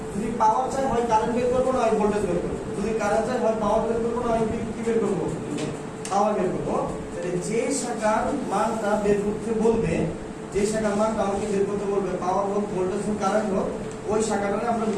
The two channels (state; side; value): identical; both; correlation 1.00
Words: যদি পাওয়ার চাই হয় কারেন্ট বের করবো না হয় ভোল্টেজ বের করবো, যদি কারেন্ট চাই হয় পাওয়ার বের করবো না হয় কি বের করবো, পাওয়ার বের করবো। তাহলে যে শাখার মানটা বের করতে বলবে, যে শাখার মানটা আমাকে বের করতে বলবে পাওয়ার হোক ভোল্টেজ হোক কারেন্ট হোক, ওই শাখাটাকে আমরা